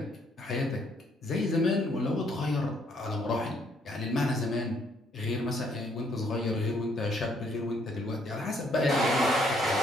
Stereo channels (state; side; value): normal; both; correlation 0.68